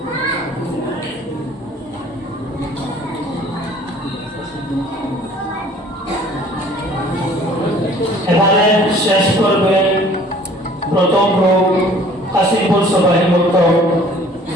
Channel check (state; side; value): normal; both; correlation 0.53